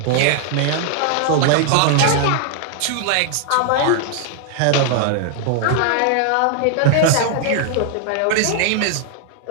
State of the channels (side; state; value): both; different; correlation 0.00